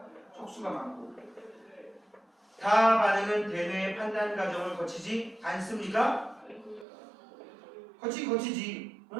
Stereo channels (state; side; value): drops out; left; at 6.9 s